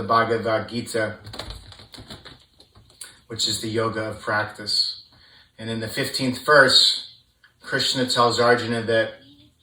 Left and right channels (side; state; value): both; identical; correlation 1.00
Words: Bhagavad Gita, which is the yoga of practice. And in the 15th verse, Krishna tells Arjuna that